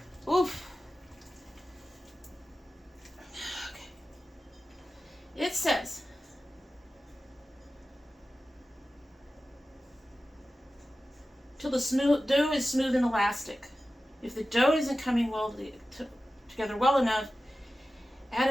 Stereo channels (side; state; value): both; normal; correlation 0.94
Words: Oof. Okay. It says, till the dough is smooth and elastic. If the dough isn't coming together well enough, add